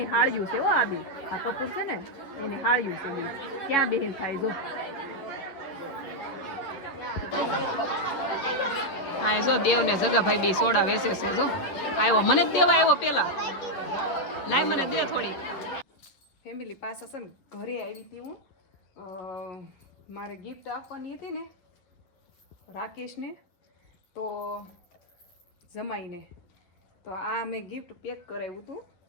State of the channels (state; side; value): late; right; 11 ms